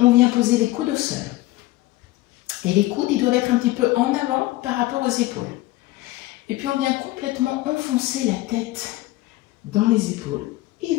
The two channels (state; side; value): quieter; right; 18.1 dB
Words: vient poser les coudes au sol. Et les coudes, ils doivent être un petit peu en avant par rapport aux épaules. Et puis on vient complètement enfoncer la tête dans les épaules.